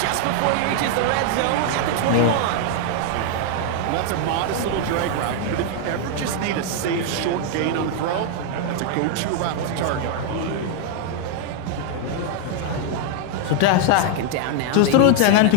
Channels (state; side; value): different; both; correlation 0.00